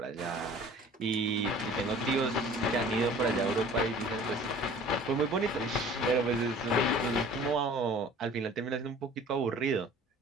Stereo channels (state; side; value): normal; both; correlation 0.47